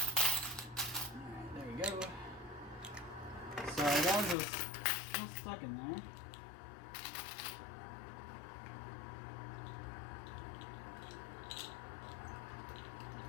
Alright, there we go. So that was still stuck in there.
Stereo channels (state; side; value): drops out; right; at 4.4 s